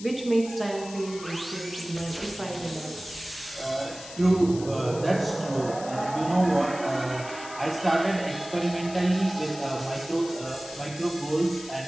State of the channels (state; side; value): noise; left; hiss, 14 dB below the sound